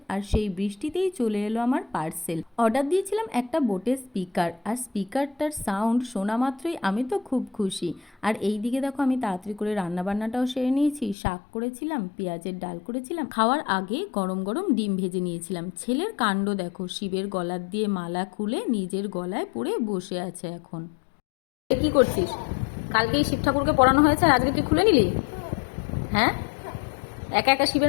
আর সেই বৃষ্টিতেই চলে এলো আমার পার্সেল। অর্ডার দিয়েছিলাম একটা বোটের স্পিকার, আর স্পিকারটার সাউন্ড শোনা মাত্রই আমি তো খুব খুশি। আর এই দিকে দেখো, আমি তাড়াতাড়ি করে রান্নাবান্নাটাও সেরে নিয়েছি। শাক করেছিলাম, পেঁয়াজের ডাল করেছিলাম, খাওয়ার আগে গরম গরম ডিম ভেজে নিয়েছিলাম। ছেলের কাণ্ড দেখো, শিবের গলার দিয়ে মালা খুলে নিজের গলায় পরে বসে আছে এখন। কি করছিস? কালকেই শিব ঠাকুরকে পড়ানো হয়েছে, আর আজকে তুই খুলে নিলি? হ্যাঁ, একা একা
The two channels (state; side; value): drops out; right; at 11.2 s